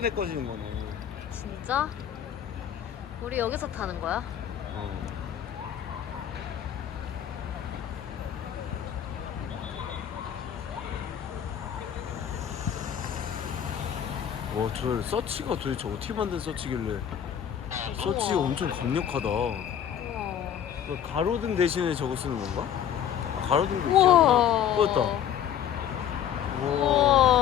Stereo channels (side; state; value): right; quieter; 9.6 dB